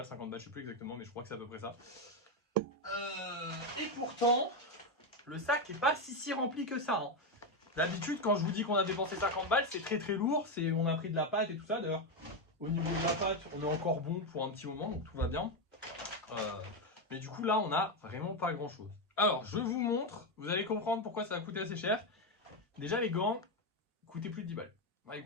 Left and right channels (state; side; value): normal; both; correlation 0.08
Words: 50 balles, je sais plus exactement, mais je crois que c'est à peu près ça. Et pourtant, le sac est pas si rempli que ça, hein. D'habitude, quand je vous dis qu'on a dépensé 50 balles, c'est très très lourd, on a pris de la pâte et tout ça. D'ailleurs, au niveau de la pâte, on est encore bon pour un petit moment, donc tout va bien. Mais du coup, là, on a vraiment pas grand chose. Alors, je vous montre, vous allez comprendre pourquoi ça a coûté assez cher. Déjà, les gants coûtaient plus de 10 balles. Ouais, ils